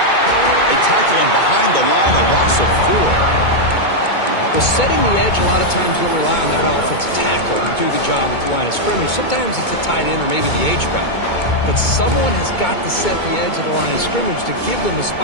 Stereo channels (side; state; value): right; late; 2.2 ms